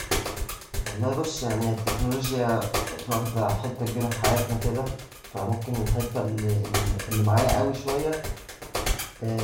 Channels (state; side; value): identical; both; correlation 1.00